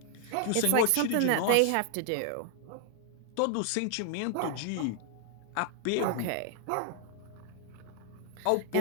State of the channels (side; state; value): both; different; correlation 0.00